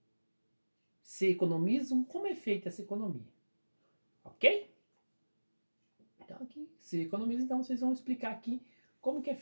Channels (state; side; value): inverted; both; correlation -1.00